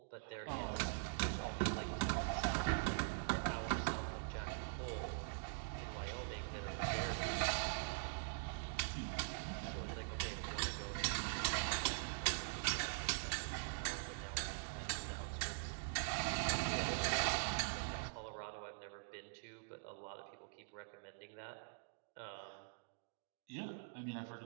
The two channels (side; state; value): left; silent; digital silence